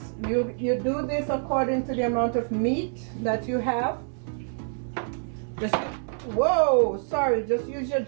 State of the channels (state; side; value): silent; left; 60 dB below the other